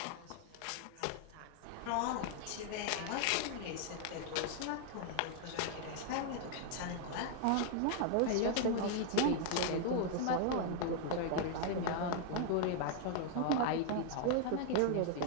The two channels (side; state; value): both; different; correlation 0.00